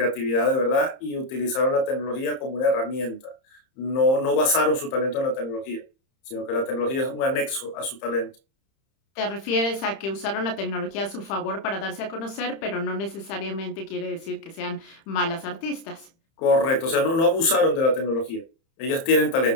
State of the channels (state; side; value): late; right; 30 ms